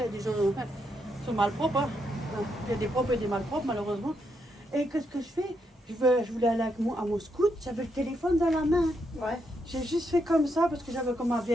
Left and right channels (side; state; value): both; normal; correlation 0.79